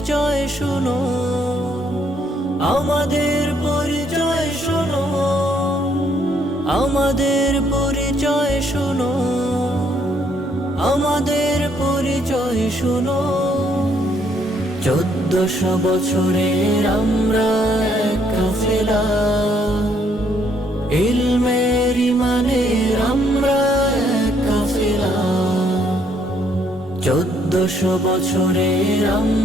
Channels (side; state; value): both; normal; correlation 0.69